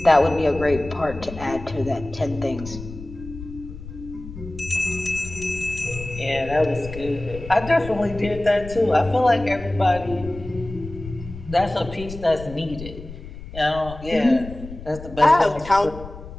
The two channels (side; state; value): left; noise; rumble, 13 dB below the sound